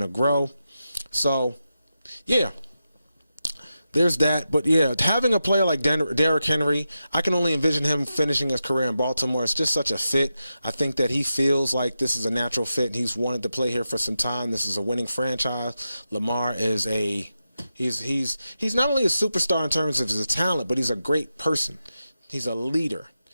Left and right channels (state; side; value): inverted; both; correlation -0.90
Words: to grow. So, yeah, there's that. But, yeah, having a player like Derrick Henry, I can only envision him finishing his career in Baltimore. It's just such a fit. I think that he feels like this is a natural fit. He's wanted to play here for some time. This is a winning franchise. Lamar is He's not only a superstar in terms of his talent, but he's a great person. He's a leader.